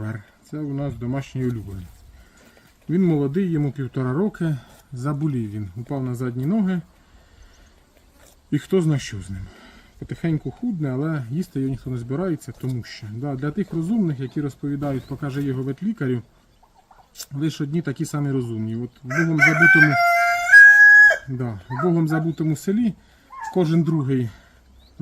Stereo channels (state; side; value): identical; both; correlation 1.00